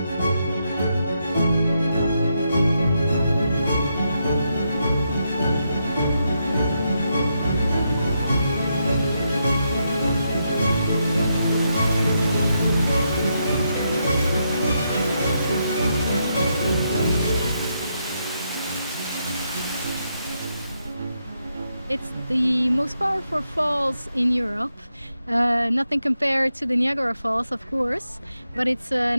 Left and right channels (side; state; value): both; inverted; correlation -0.82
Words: It's the most powerful falls in Europe. Nothing compared to the Niagara Falls, of course, but it's